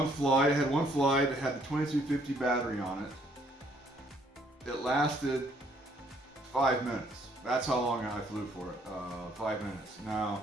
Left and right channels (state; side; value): normal; both; correlation 0.66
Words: had one flight that had the 2250 battery on it. It lasted 5 minutes. That's how long I flew for it, 5 minutes.